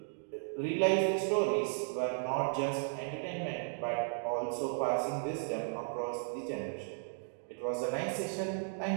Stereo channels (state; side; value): silent; left; digital silence